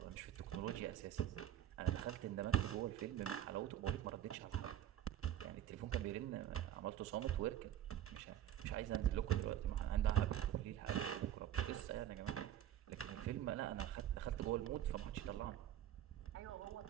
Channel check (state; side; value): quieter; left; 11.4 dB